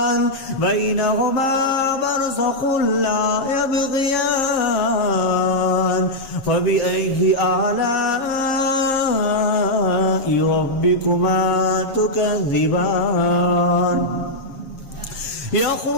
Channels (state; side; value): late; right; 7.1 ms